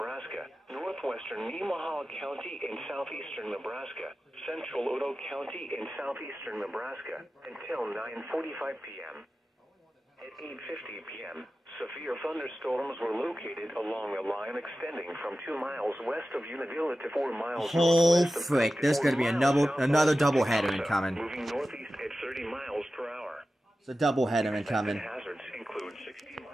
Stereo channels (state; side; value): normal; both; correlation 0.94